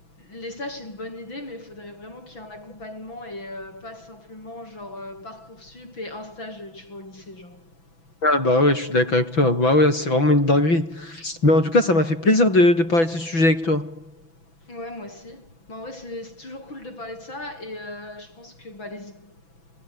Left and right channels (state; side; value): late; right; 6.0 ms